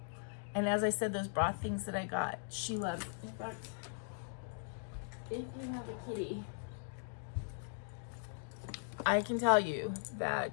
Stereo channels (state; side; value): silent; right; digital silence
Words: as I said, those broth things that I got, she loves. In fact, if you have a kitty, I can tell you